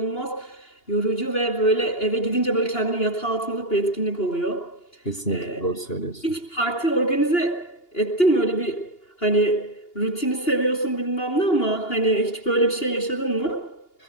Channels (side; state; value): right; late; 2.8 ms